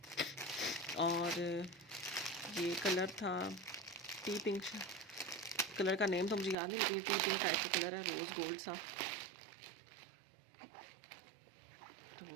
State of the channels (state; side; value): drops out; left; at 6.6 s